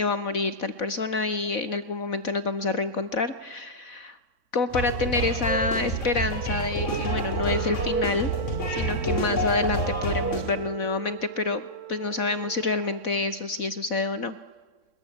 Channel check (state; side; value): late; right; 3.6 ms